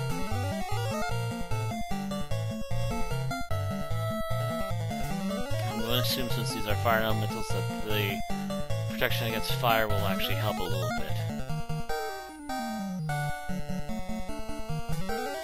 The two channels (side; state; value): both; identical; correlation 1.00